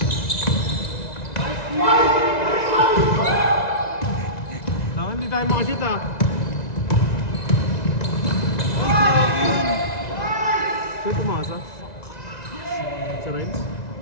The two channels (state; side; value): late; right; 1.9 ms